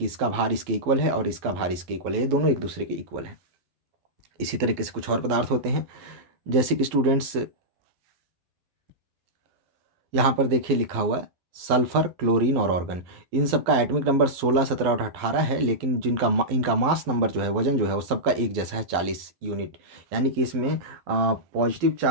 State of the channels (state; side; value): late; left; 12 ms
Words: इसका भार इसके इक्वल है और इसका भार इसके इक्वल है, ये दोनों एक दूसरे के इक्वल है। इसी तरीके से कुछ और पदार्थ होते हैं, जैसे कि स्टूडेंट्स यहाँ पर देखिए लिखा हुआ है सल्फर, क्लोरीन और ऑर्गन। इन सब का एटॉमिक नंबर 16 17 और 18 है, लेकिन इनका मास नंबर जो है, वजन जो है, वो सबका एक जैसा है, 40 यूनिट। यानी कि इसमें पॉजिटिव